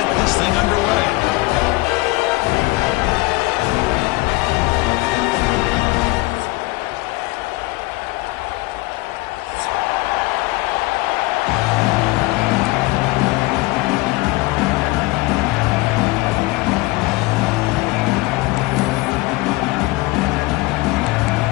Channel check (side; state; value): right; quieter; 22.4 dB